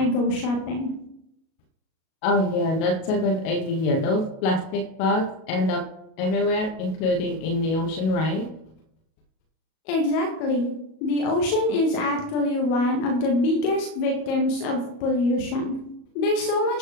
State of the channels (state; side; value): late; right; 37 ms